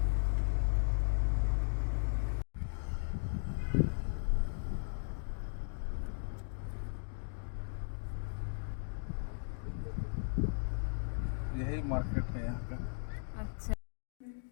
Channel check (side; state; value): right; silent; digital silence